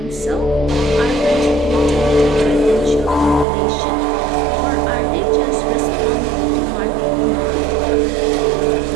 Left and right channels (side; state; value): left; drops out; at 3.5 s